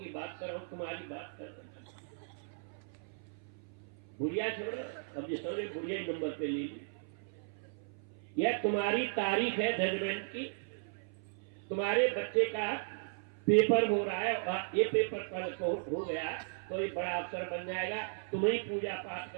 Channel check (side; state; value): left; silent; 54 dB below the other